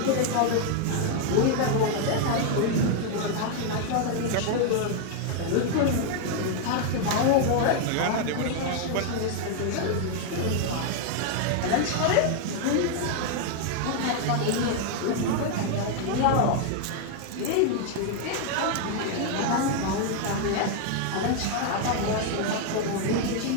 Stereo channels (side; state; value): both; different; correlation 0.00